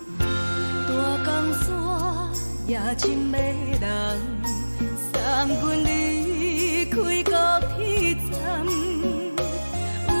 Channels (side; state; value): both; inverted; correlation -1.00